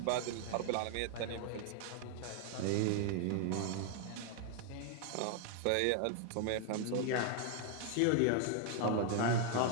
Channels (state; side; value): different; both; correlation 0.00